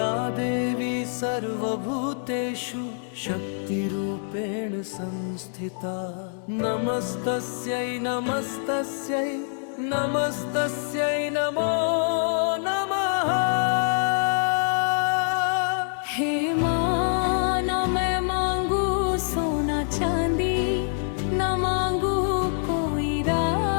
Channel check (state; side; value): silent; right; 61 dB below the other